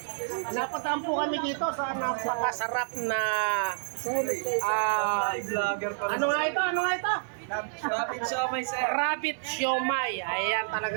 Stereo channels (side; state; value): left; silent; digital silence